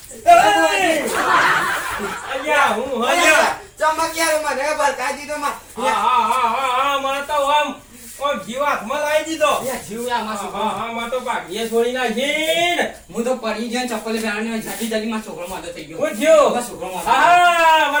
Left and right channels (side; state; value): both; identical; correlation 1.00